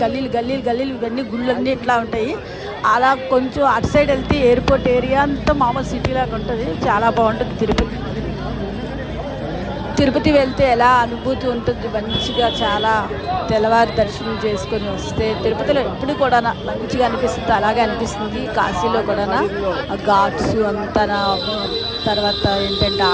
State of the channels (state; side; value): identical; both; correlation 1.00